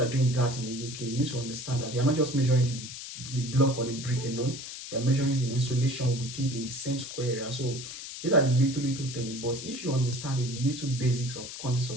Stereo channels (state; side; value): noise; left; hiss, 10 dB below the sound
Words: are doing that in the UK, you need to understand that you are not just measuring the block or the brick alone. You are measuring the insulation with it in the same square area. So these are the little things. But if you understand the little basics of quantity